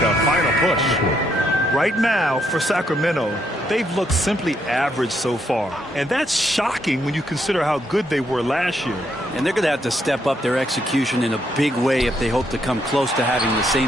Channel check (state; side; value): normal; both; correlation 0.75